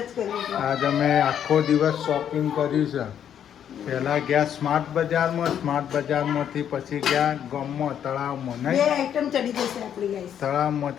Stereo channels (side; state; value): right; quieter; 9.3 dB